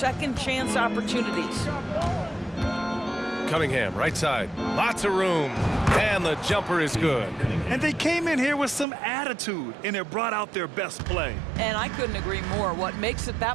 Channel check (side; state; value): left; drops out; at 8.8 s